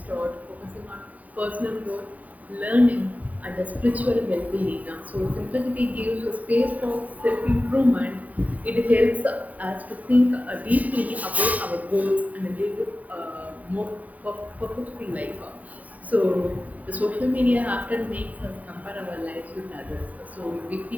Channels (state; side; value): late; left; 0.073 ms